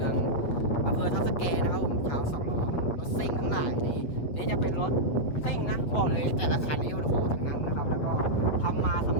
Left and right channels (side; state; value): right; late; 8.4 ms